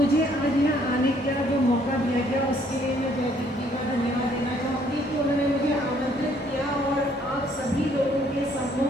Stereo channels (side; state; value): both; normal; correlation 0.64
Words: आज यहाँ आने का जो मौका दिया गया उसके लिए मैं जयदीप जी का धन्यवाद देना चाहूँगी कि उन्होंने मुझे आमंत्रित किया और आप सभी लोगों के